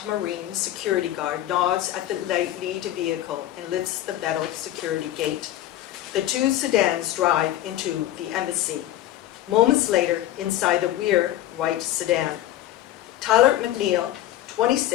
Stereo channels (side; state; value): right; quieter; 13.6 dB